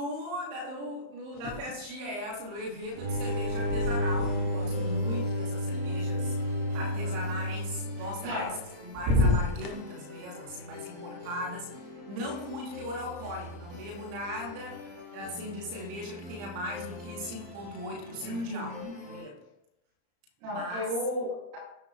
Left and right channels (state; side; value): late; left; 35 ms